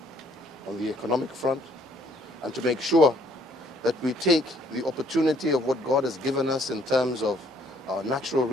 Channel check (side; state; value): both; normal; correlation 0.64